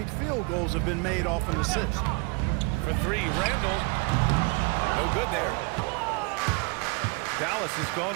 field goals have been made off an assist. For 3, Randall. No good there. Dallas has gone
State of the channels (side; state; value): left; quieter; 31.0 dB